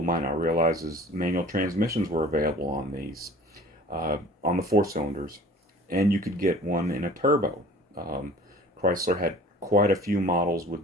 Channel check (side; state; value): both; normal; correlation 0.46